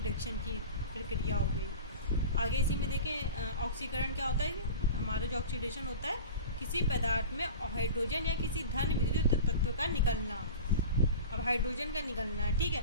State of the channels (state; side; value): inverted; both; correlation -0.33